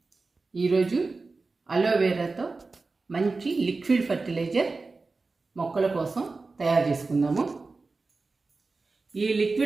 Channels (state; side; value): quieter; left; 3.8 dB